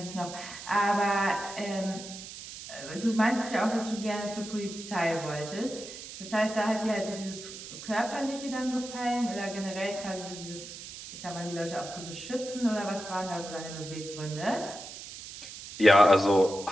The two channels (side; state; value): right; noise; hiss, 12 dB below the sound